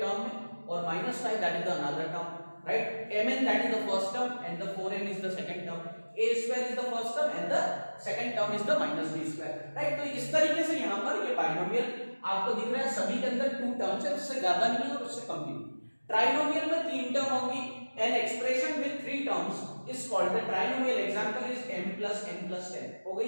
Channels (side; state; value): both; inverted; correlation -1.00